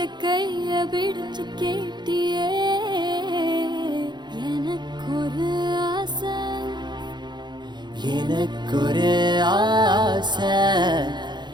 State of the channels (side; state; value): left; late; 0.21 ms